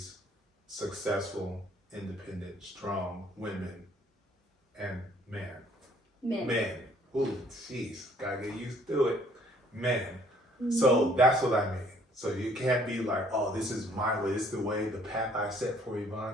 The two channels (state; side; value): normal; both; correlation 0.61